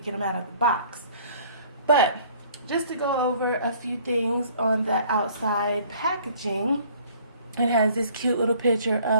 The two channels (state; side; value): inverted; both; correlation -0.55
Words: them out of the box. But just to go over a few things on the outside packaging, it has this cute little picture